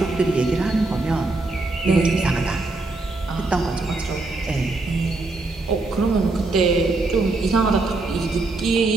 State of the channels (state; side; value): quieter; left; 3.3 dB